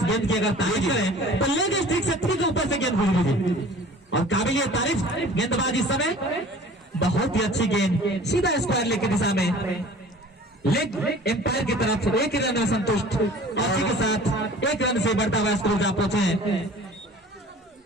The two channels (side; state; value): both; normal; correlation 0.45